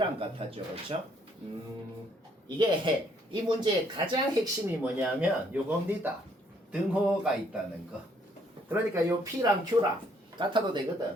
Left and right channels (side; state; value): both; normal; correlation 0.67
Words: 같았죠. 그렇죠? 이게 이 문제의 가장 핵심이 뭐냐면 요겁니다. 등호가 있다는 거. 그러니까 요 P랑 Q랑 같아도